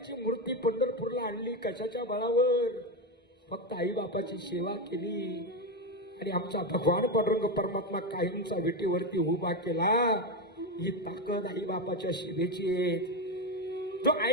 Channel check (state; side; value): normal; both; correlation 0.12